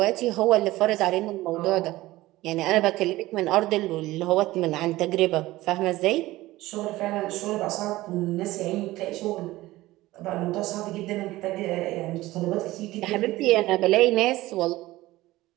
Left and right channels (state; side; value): quieter; left; 17.7 dB